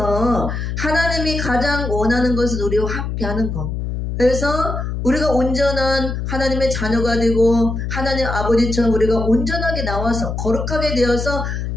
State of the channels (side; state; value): left; noise; hum, 4 dB below the sound